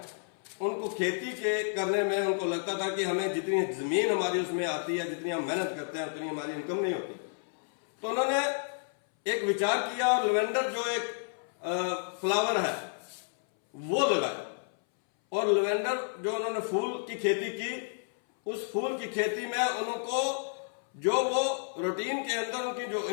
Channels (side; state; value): right; silent; 57 dB below the other